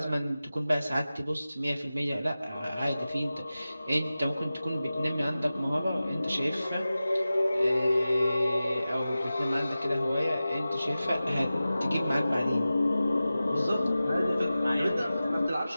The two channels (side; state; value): both; inverted; correlation -0.95